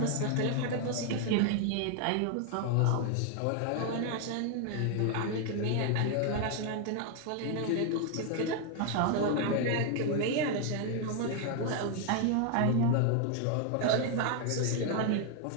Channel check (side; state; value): both; different; correlation 0.00